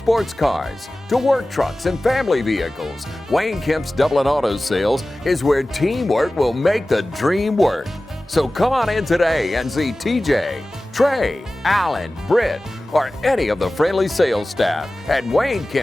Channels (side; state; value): both; normal; correlation 0.97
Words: cars to work trucks and family vehicles, Wayne Kemp's Dublin Auto Sales is where teamwork will make the dream work. So come on in today and see TJ, Trey, Alan, Britt, or any of the friendly sales staff at Wayne